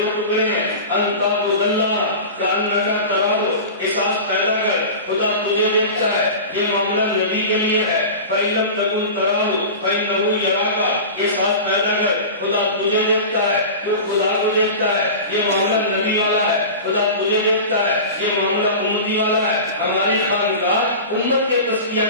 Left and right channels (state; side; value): inverted; both; correlation -0.32